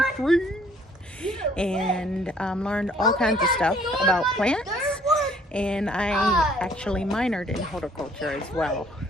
And learned all kinds of stuff about plants. And I actually minored in horticulture as well.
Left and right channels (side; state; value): both; normal; correlation 0.60